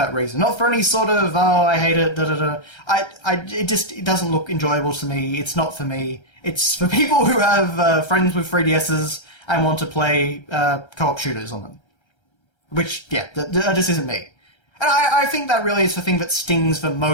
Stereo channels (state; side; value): late; right; 1.3 ms